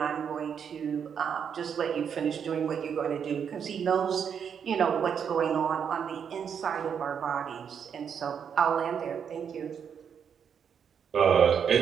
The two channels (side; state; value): left; quieter; 7.5 dB